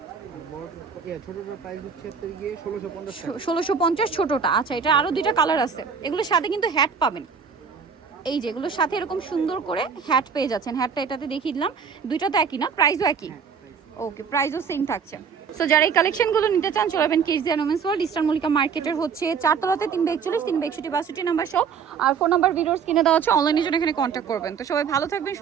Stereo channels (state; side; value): quieter; left; 6.3 dB